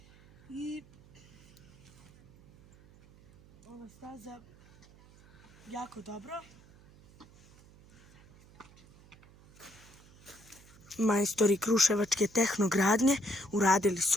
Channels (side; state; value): right; noise; hum, 25 dB below the sound